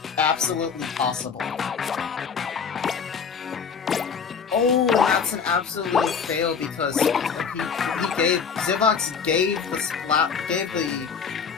absolutely possible. Oh, that's an absolute fail because Zivox gave the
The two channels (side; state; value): right; quieter; 6.3 dB